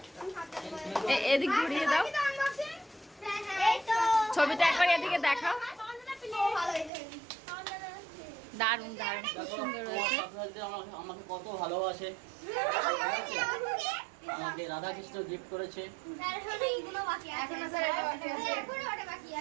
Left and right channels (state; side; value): drops out; left; at 6.9 s